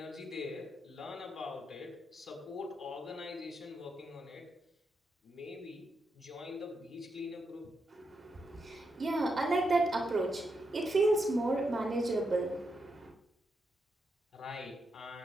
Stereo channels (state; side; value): normal; both; correlation 0.83